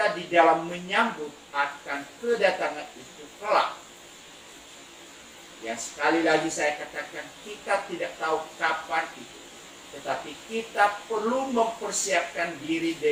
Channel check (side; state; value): both; identical; correlation 1.00